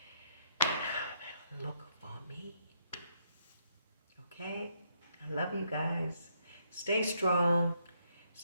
look for me. Okay? I love you guys. Stay strong.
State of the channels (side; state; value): both; inverted; correlation -0.73